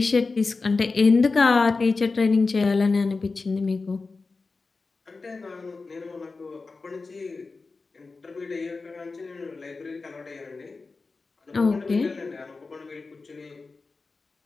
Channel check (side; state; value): right; quieter; 4.0 dB